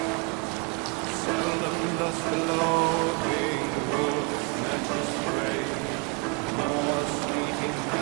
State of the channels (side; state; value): left; quieter; 30.3 dB